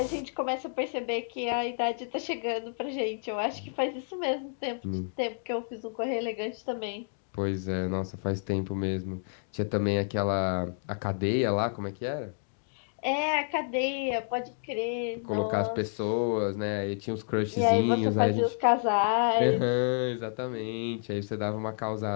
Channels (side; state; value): right; silent; digital silence